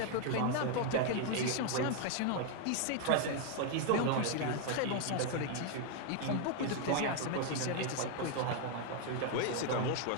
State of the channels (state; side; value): different; both; correlation 0.00